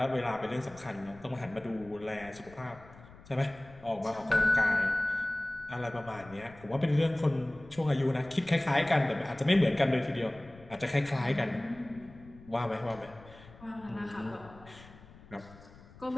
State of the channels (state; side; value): noise; left; rumble, 21 dB below the sound